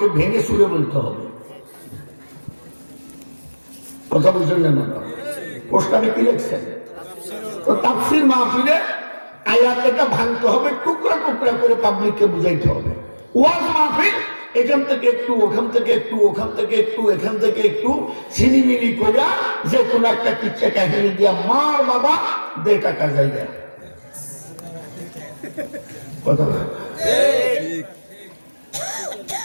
ভেঙে চুরে বলতে হবে। কথা বুঝলেন না? পোস্টারে কি লিখছেন? তো তাফসীর মাহফিলে আয়াতটা ভাঙতে হবে, টুকরা টুকরা করে পাবলিককে বুঝাইতে হবে। ওয়াজ মাহফিল এখান থেকে একটু, ওখান থেকে একটু, ওখান থেকে একটু, এখান থেকে একটু ছিনিমিনি করে যে কোনো একটা কিচ্ছা কাহিনী দিয়া মার বাবা দে টাকা জায়গা। কথা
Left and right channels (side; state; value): both; inverted; correlation -1.00